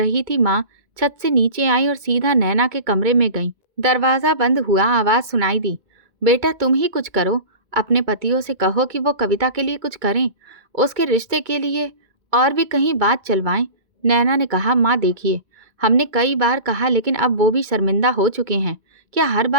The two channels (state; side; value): late; left; 2.2 ms